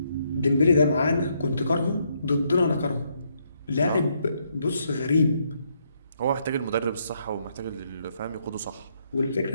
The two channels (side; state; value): both; inverted; correlation -0.74